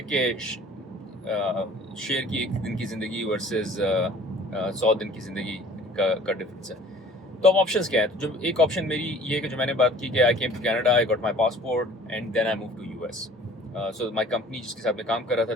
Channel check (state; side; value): normal; both; correlation 0.50